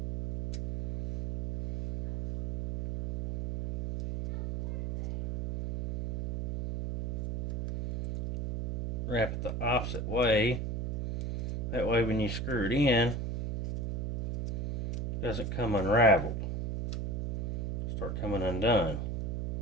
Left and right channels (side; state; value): right; noise; hum, 3 dB below the sound